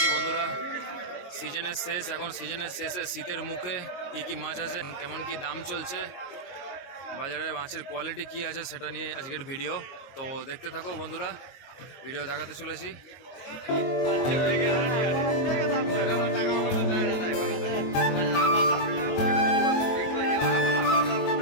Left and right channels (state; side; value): late; right; 22 ms